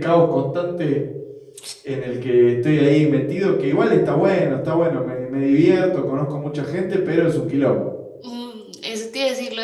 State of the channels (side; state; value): both; identical; correlation 1.00